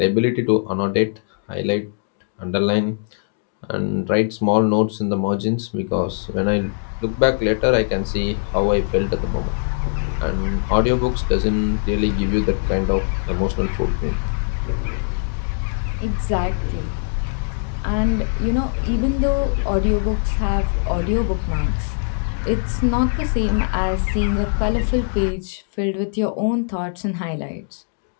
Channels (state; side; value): silent; right; digital silence